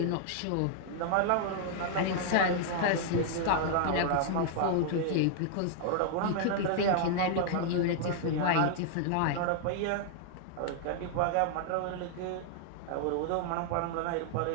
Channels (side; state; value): both; different; correlation -0.01